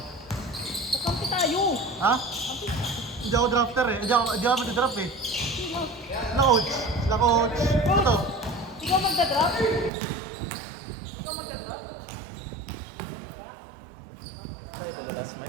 Kakampi tayo! Ha? Hindi ako drafter eh. Hindi ako mag-draft eh. Sino? Sila coach. Sila coach. Ito. Ikaw magda-draft? Ikaw magda-draft?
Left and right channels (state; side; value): drops out; left; at 9.9 s